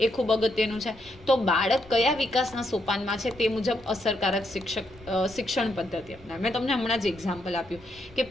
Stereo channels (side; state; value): left; noise; rumble, 23 dB below the sound